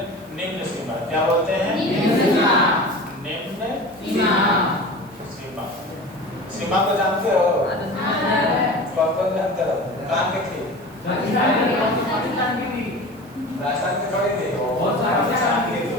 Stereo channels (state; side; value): noise; right; hiss, 27 dB below the sound